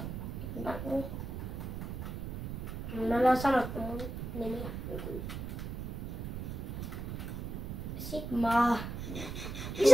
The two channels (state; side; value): noise; right; rumble, 8 dB below the sound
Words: Me ollaan sanottu mun nimi. Sigma.